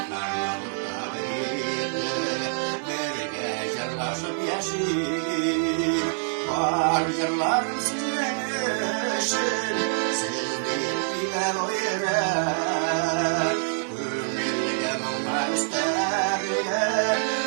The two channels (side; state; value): left; silent; 61 dB below the other